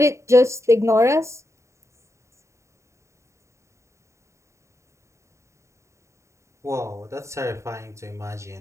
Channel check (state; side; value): late; left; 0.14 ms